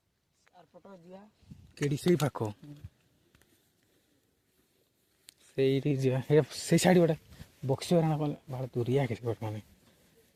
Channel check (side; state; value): both; identical; correlation 1.00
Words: କେଡି ସେଇ ପାଖ ସେଇଠି ଯିବା ସେଇ ସାଇଡ୍ ଗୋଟେ ବକ୍ସି ବାରଣ କଲେ ଭାಳ ଦୂରିଆ କିଛି ଗୋଟେ ମାନେ